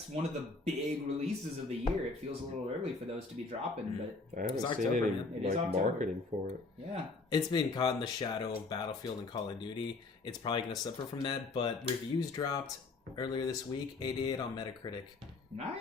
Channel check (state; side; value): quieter; right; 3.7 dB